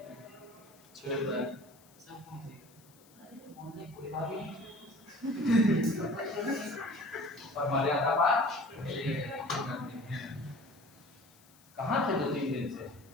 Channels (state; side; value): noise; left; hiss, 27 dB below the sound